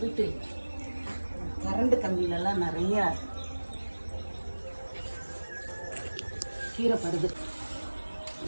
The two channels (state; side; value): inverted; both; correlation -1.00